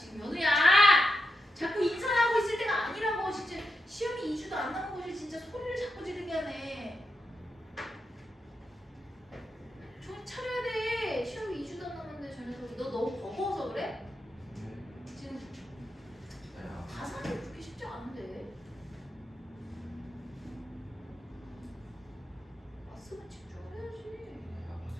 연우야! 자꾸 인사하고 있을 때가 아니라고. 진짜 시험이 2주도 안 남은 것이 진짜 소리를 자꾸 지르게 하네. 정신 차려야 돼. 시험이 2주도 안 남았는데 저 녀석이. 너 너무 버거워서 그래? 네. 지금 야, 가사는 그렇게 쉽지 않은데. 왔으면 집중을 해야지.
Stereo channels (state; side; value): normal; both; correlation 0.86